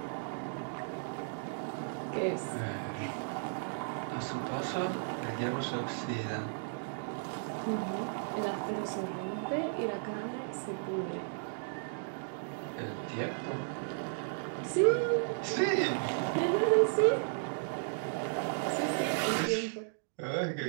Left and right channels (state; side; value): silent; left; digital silence